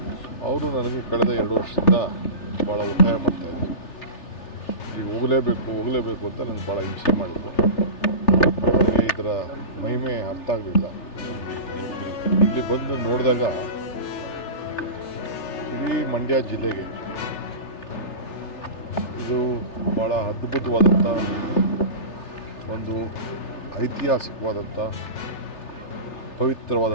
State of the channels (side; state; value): right; late; 3.3 ms